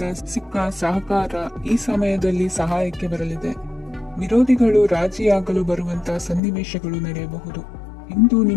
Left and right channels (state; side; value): drops out; right; at 6.4 s